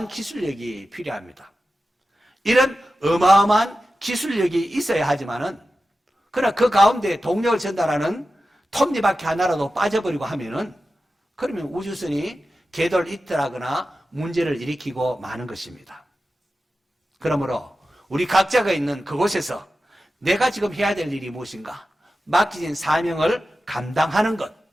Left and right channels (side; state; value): both; normal; correlation 0.93